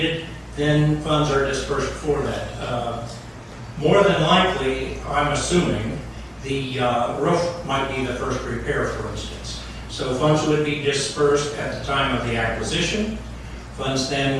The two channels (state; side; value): identical; both; correlation 1.00